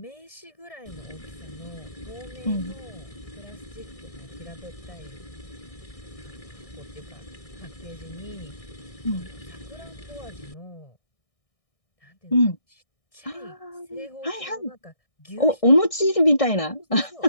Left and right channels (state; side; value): late; right; 1.6 ms